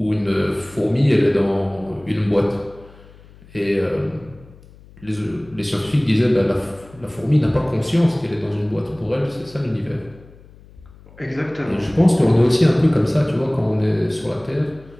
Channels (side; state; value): left; noise; hum, 23 dB below the sound